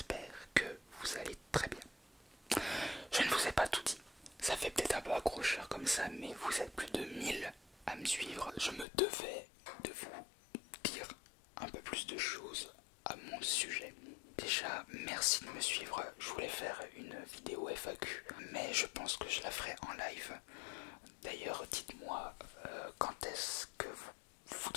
que vous allez très bien. Je ne vous ai pas tout dit, ça fait peut-être un peu accrocheur comme ça, mais vous êtes plus de 1000 à me suivre. Je me devais de vous dire un peu plus de choses à mon sujet. Déjà, merci de me suivre, je voulais faire une vidéo FAQ, mais je pense que je la ferai en live. D'ailleurs, dites-moi quand est-ce que vous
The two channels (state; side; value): drops out; right; at 8.8 s